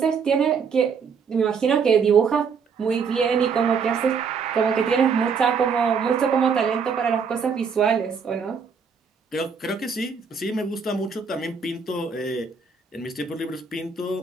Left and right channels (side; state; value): left; quieter; 5.9 dB